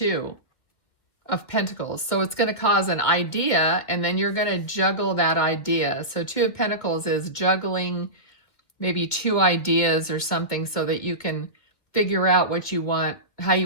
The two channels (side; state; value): right; late; 2.3 ms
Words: of Pentacles. So it's going to cause an idea, and then you're going to juggle that idea. So 2 of Pentacles is juggling maybe 2 ideas or something so that you can figure out what you want, how